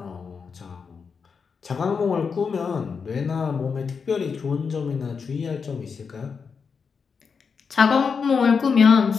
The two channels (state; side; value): quieter; right; 5.7 dB